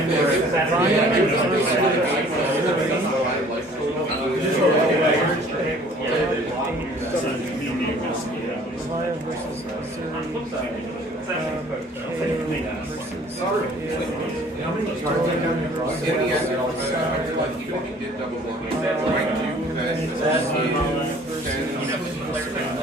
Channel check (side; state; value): both; normal; correlation 0.53